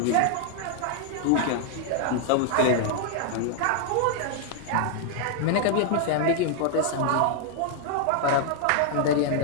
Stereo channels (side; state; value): both; different; correlation 0.00